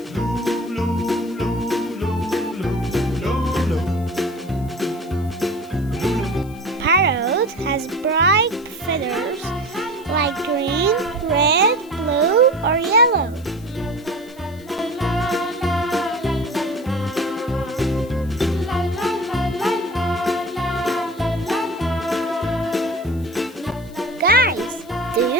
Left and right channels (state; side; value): noise; left; hiss, 25 dB below the sound